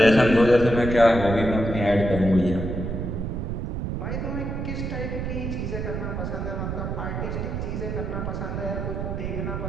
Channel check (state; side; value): noise; right; rumble, 3 dB below the sound